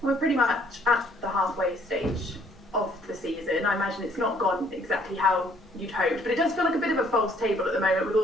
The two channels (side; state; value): both; normal; correlation 0.62